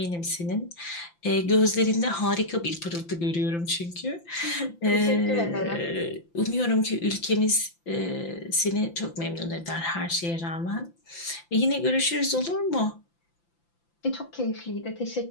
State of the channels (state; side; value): late; right; 5.9 ms